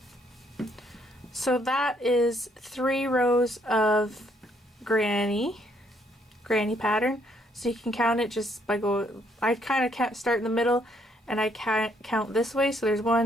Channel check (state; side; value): normal; both; correlation 0.70